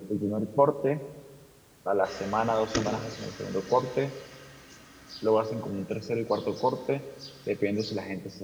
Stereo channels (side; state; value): both; identical; correlation 1.00